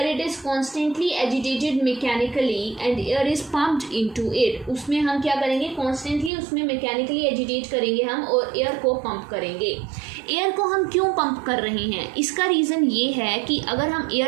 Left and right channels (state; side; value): drops out; left; at 6.3 s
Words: it is constantly agitated mechanically and air is pumped into it. उसमें हम क्या करेंगे, constantly उसमें mechanically agitate करेंगे हम और air को pump करेंगे। एयर को हम क्यों पंप कर रहे हैं, इसका रीज़न ये है कि अगर हम